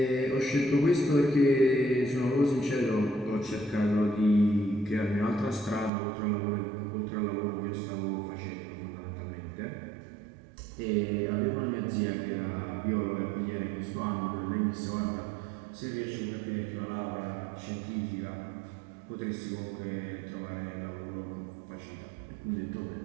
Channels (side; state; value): left; drops out; at 5.9 s